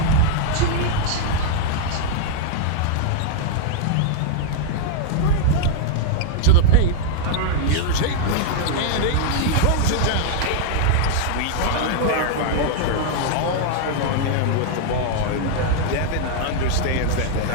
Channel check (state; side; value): different; both; correlation -0.01